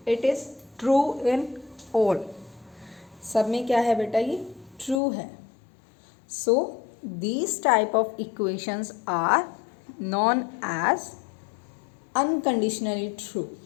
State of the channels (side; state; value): right; drops out; at 5.0 s